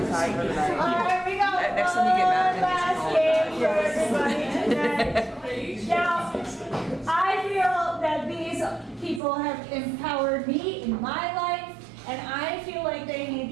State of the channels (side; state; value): left; drops out; at 9.2 s